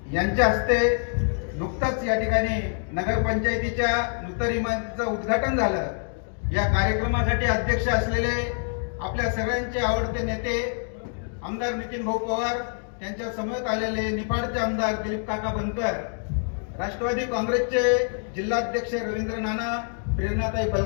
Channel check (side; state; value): right; silent; 57 dB below the other